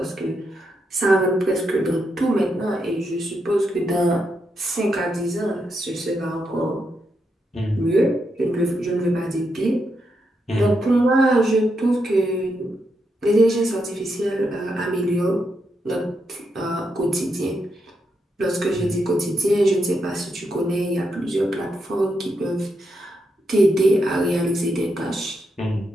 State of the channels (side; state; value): both; normal; correlation 0.82